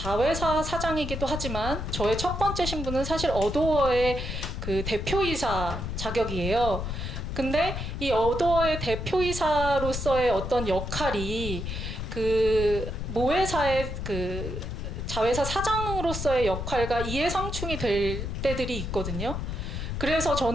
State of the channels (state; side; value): noise; left; rumble, 4 dB below the sound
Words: 사장이기도 하지만 저의 첫 번째 신분은 사실 어도어의 그 대표이사 자격이에요. 근데 이 어도어의 대표이사로서의 어떤 역할이 그 모회사의 그 자회사 사장으로서의 역할과 이해상충이 될 때들이 있거든요. 그래서